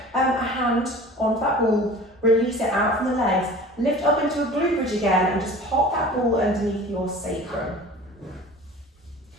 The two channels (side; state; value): both; normal; correlation 0.41